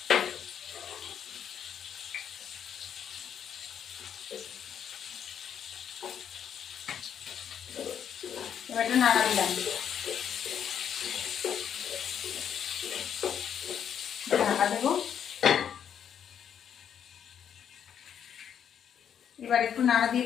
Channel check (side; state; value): right; quieter; 8.7 dB